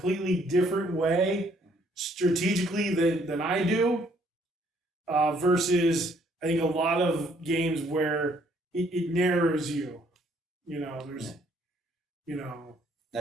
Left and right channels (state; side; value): normal; both; correlation 0.65